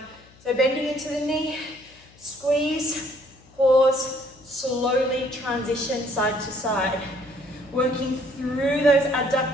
So bending into the knee, squeeze, pause, slowly transition side to side. Working through those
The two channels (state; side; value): noise; left; hum, 27 dB below the sound